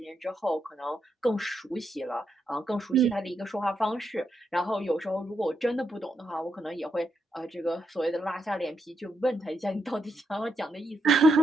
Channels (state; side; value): normal; both; correlation 0.81